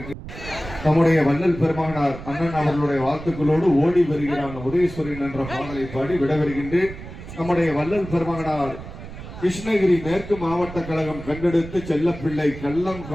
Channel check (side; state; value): right; noise; rumble, 12 dB below the sound